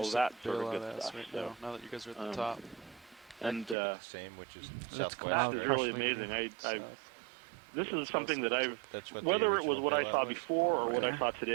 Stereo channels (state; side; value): drops out; left; at 3.8 s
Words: of that sort of good stuff. So now that you guys are at the top, and the same, which is southwest. That is really amazing. This is something that whether it was what I saw before or what I saw